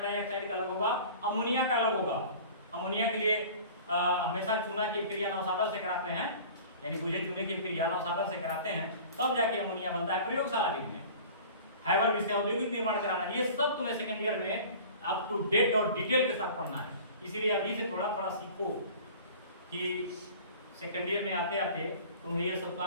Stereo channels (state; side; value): inverted; both; correlation -0.42